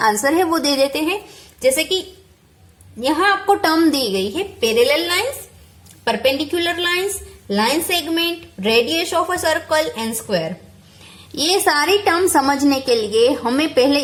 आंसर है वो दे देते हैं। जैसे कि यहाँ आपको टर्म दी गई है parallel lines, perpendicular lines, line segment, radius of a circle and square. ये सारी टर्म समझने के लिए हमें पहले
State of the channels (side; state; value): both; identical; correlation 1.00